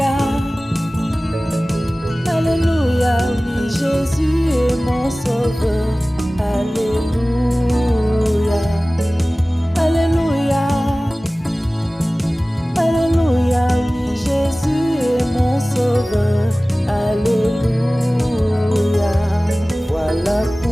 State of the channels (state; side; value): normal; both; correlation 0.98